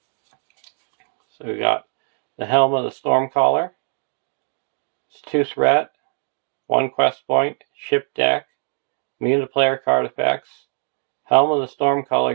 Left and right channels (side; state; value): left; silent; 64 dB below the other